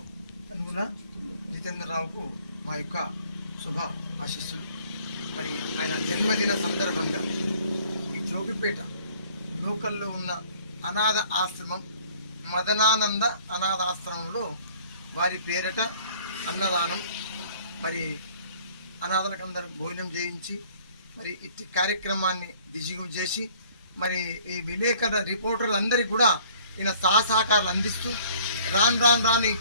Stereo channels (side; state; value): both; inverted; correlation -0.55